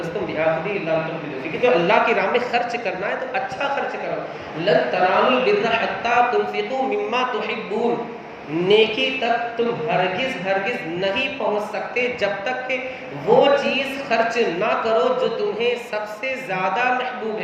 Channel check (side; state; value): both; identical; correlation 1.00